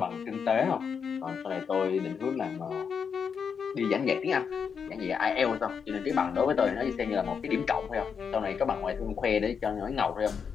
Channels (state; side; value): quieter; right; 6.5 dB